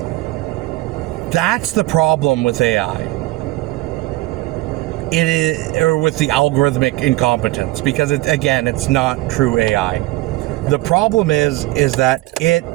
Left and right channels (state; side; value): quieter; left; 19.2 dB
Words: That's the problem with AI. It is, or with the algorithmic incompetence, because it's not true AI. The problem is that it